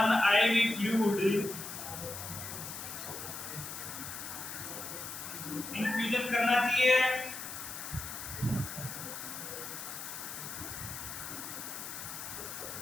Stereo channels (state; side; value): noise; left; hiss, 8 dB below the sound